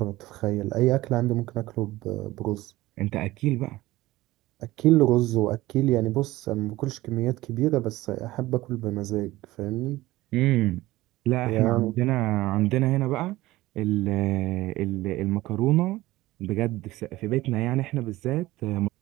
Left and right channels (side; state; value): left; quieter; 17.9 dB